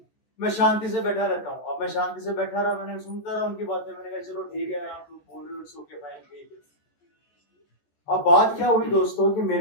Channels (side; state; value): right; late; 14 ms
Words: मैं शांति से बैठा रहता हूँ। अब मैं शांति से बैठा रहा, मैंने सुनता रहा उनकी बातें, मैंने कहा चलो ठीक है आप लोग बोल रहे हो, सो के फाइन ठीक है। अब बात क्या हुई दोस्तों कि मेरे